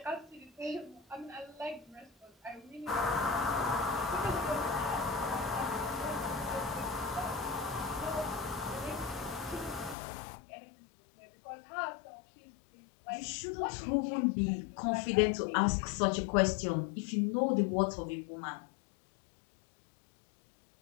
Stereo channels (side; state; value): right; drops out; at 10.0 s